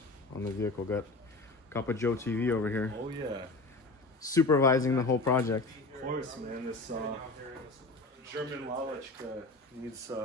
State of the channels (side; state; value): right; quieter; 3.1 dB